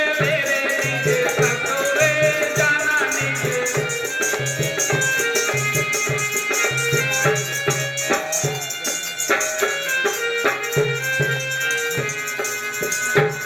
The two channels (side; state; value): both; identical; correlation 1.00